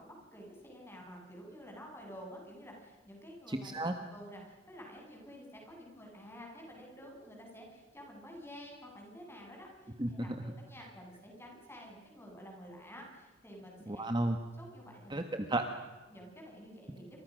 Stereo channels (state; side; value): normal; both; correlation 0.65